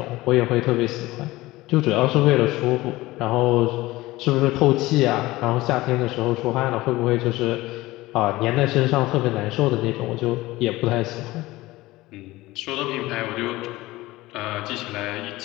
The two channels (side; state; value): right; quieter; 18.8 dB